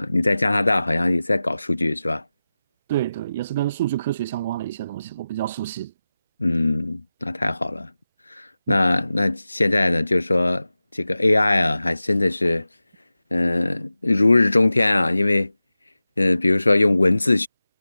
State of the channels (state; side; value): inverted; both; correlation -0.95